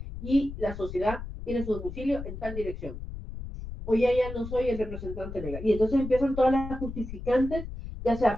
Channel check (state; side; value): noise; left; rumble, 9 dB below the sound